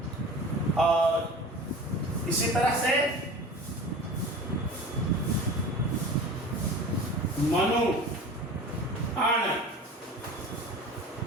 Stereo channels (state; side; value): normal; both; correlation 0.37